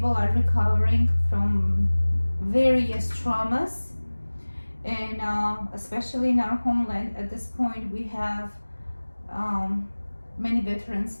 are recovering from various traumas, and especially in our homeland at this point, we have many veterans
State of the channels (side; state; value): both; inverted; correlation -1.00